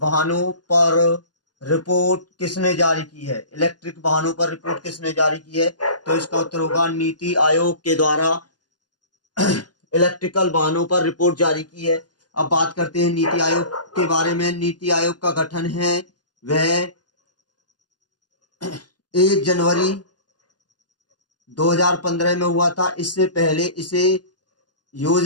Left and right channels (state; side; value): late; right; 0.70 ms